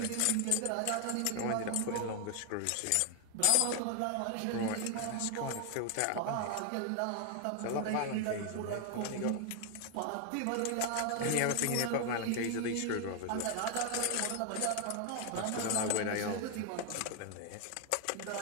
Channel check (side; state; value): both; different; correlation 0.01